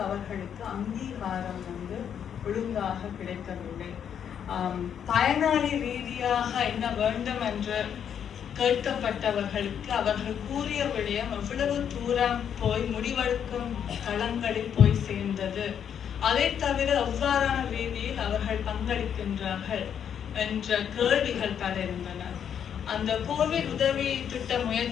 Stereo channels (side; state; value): right; quieter; 8.5 dB